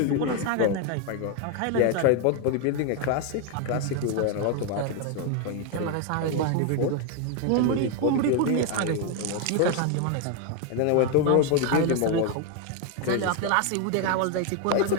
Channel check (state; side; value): different; both; correlation 0.01